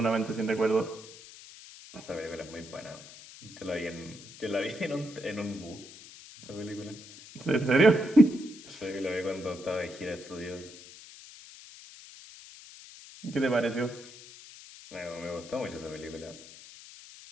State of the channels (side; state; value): left; noise; hiss, 17 dB below the sound